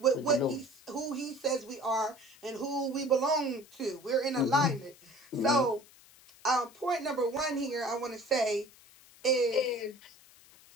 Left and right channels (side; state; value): left; noise; hiss, 25 dB below the sound